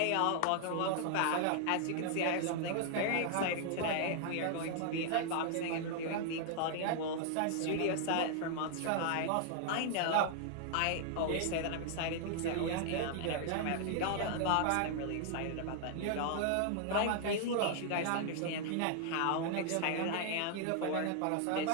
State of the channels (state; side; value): different; both; correlation -0.01